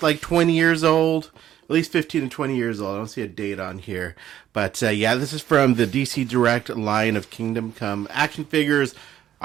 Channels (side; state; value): left; quieter; 11.4 dB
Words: like 20 years old, at least 15 to 20 years old. I don't see a date on here. But yeah, this is from the DC Direct line of Kingdom Come action figures,